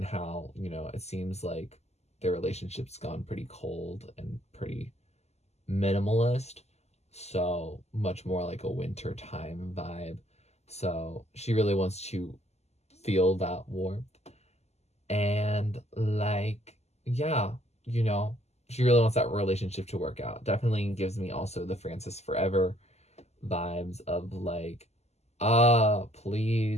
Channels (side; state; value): right; late; 0.32 ms